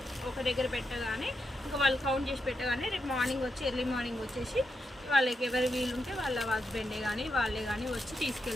ఒక దగ్గర పెట్టగానే ఇంకా వాళ్ళు కౌంట్ చేసి పెట్టగానే రేపు మార్నింగ్ వచ్చి ఎర్లీ మార్నింగ్ వచ్చేసి వాళ్ళకి ఎవరు వీలుంటే వాళ్ళ హస్బెండే కానీ వాళ్ళే కానీ వచ్చి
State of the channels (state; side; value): normal; both; correlation 0.85